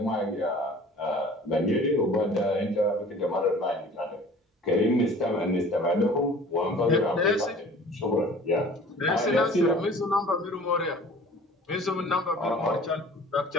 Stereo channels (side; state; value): both; normal; correlation 0.47